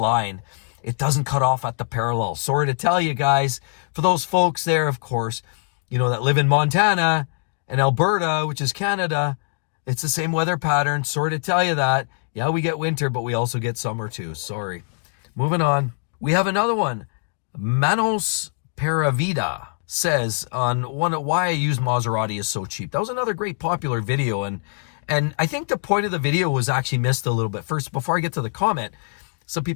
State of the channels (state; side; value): silent; right; digital silence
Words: It doesn't cut off at the parallel. Sorry to tell you guys, for those folks there, of course, you know, that live in Montana and Alberta, which is Canada, it's the same weather pattern. Sorry to tell you that. Yeah, we get winter, but we also get summer too. Sorry. Moving on. We have another one. Manos Paravida says on why I use Maserati is so cheap. That was another great popular video, and I think the point of the video was actually missed a little bit. First, before I get to the comment, some